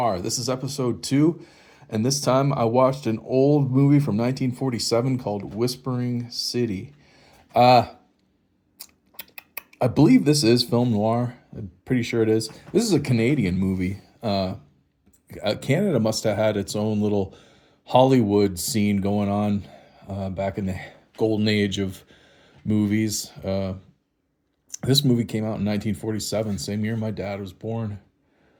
This is episode 2, and this time I watched an old movie from 1947 called Whispering City. Uh, I believe this is film noir. I'm pretty sure it is. This is a Canadian movie. Canada must have had its own little Hollywood scene going on back in the golden age of movies. This movie came out in 1947, same year my dad was born.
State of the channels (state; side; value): identical; both; correlation 1.00